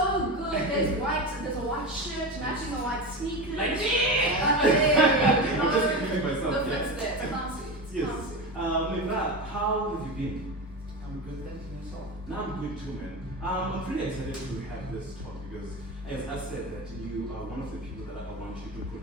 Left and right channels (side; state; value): both; normal; correlation 0.23